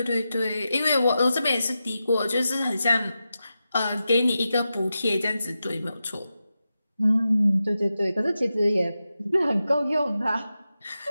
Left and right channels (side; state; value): both; inverted; correlation -0.91